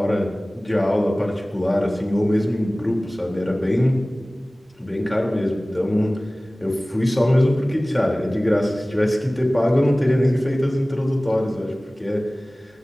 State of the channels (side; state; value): both; normal; correlation 0.98